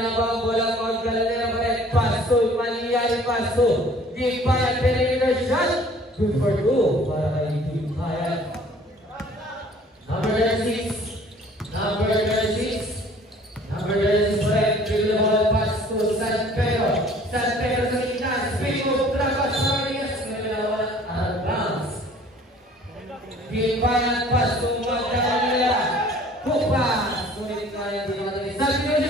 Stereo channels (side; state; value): both; normal; correlation 0.52